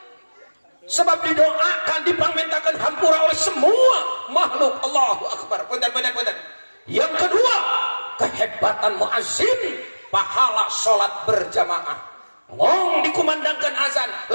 Sebab didoakan, dipangmentakan hampura oleh semua makhluk. Allahu Akbar. Punten. Yang kedua, kehebatan muazzin, pahala sholat berjamaah. Ngong dikumandangkan azan,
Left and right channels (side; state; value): both; inverted; correlation -1.00